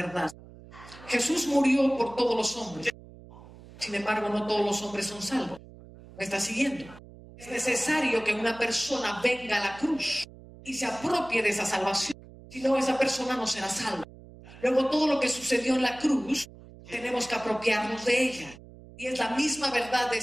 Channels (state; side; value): noise; right; hum, 19 dB below the sound